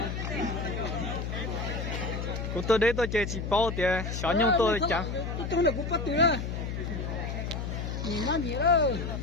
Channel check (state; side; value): noise; left; hum, 4 dB below the sound